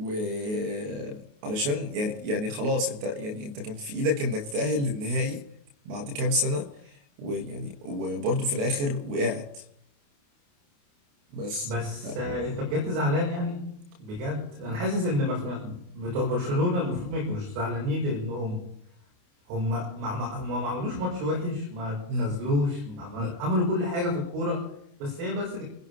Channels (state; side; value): late; left; 28 ms